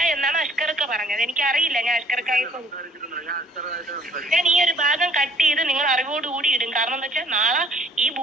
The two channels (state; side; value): normal; both; correlation 0.58